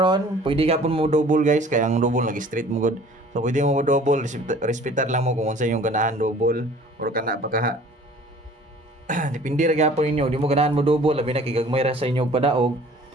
pwede gapon mo double guys, kaya ang double lagi straight mo good. So pwede mo double, respetar lang mo kung unsa yung ganahan double or kana pa ka. Depende ra gapon ninyo, di mo ganahan mo double, labi na kigagmay ra sa inyo padaog.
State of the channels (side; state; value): both; normal; correlation 0.50